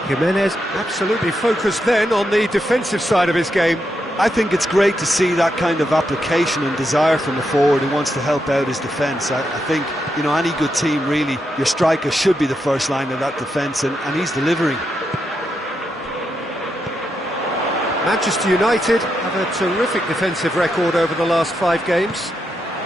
Jimenez absolutely focused then on the defensive side of his game. I think it's great to see that kind of application and desire from a forward who wants to help out his defence. I think, you know, any good team, really, your striker should be the first line of that defence, and he's delivering. Manchester United have a terrific defensive record over the last 5 games.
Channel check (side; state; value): both; normal; correlation 0.83